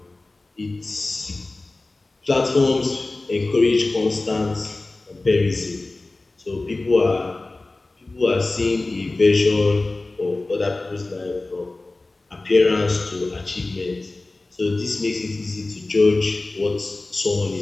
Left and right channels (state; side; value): quieter; right; 3.1 dB